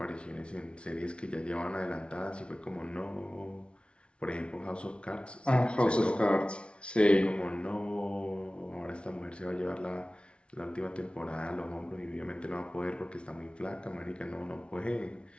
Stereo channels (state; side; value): late; right; 0.058 ms